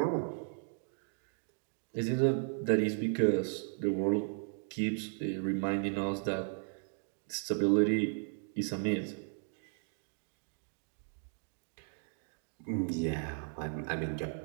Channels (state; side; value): silent; left; 54 dB below the other